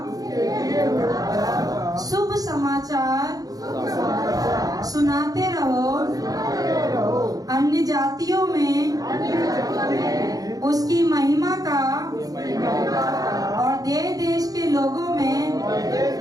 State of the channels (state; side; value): late; left; 0.18 ms